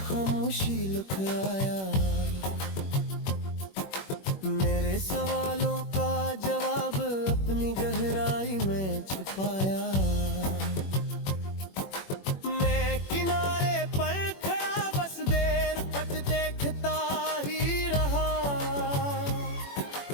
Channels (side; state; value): right; late; 21 ms